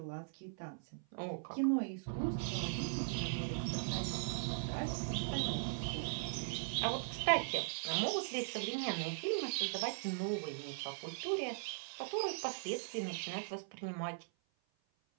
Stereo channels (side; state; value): left; silent; 51 dB below the other